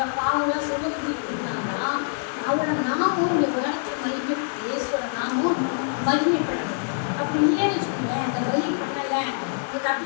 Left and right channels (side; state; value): right; silent; 62 dB below the other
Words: பாவங்களாம் சுமந்து இருந்தாங்கன்னா அவரோட நாமும் இங்கே உலகத்தில் மகிமை, இயேசுவோட நாமும் மகிமைப்படணும். அப்படி இல்லைன்னு வச்சுக்கோங்களேன், அந்த பலி பண்ணலை அவங்க